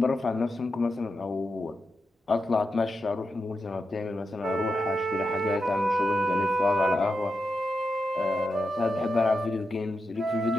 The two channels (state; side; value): normal; both; correlation 0.87